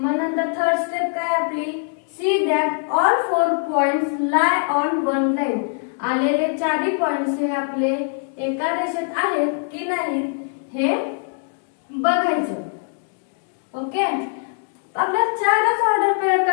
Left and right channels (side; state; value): right; silent; 63 dB below the other